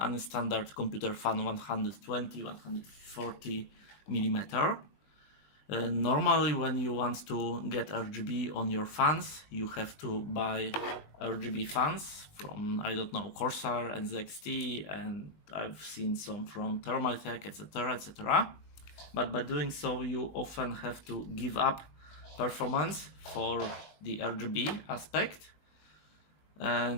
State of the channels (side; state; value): right; late; 20 ms